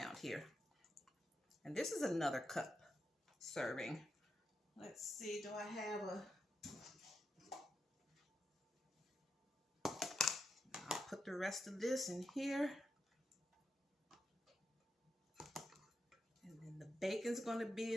here. And this is another cup serving. Let's see, do I have a... I'll put the rest of this in here. And then the bacon's going to be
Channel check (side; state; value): both; normal; correlation 0.85